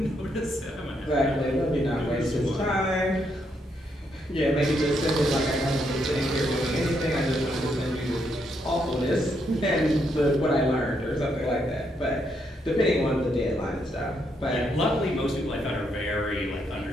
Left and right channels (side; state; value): both; normal; correlation 0.77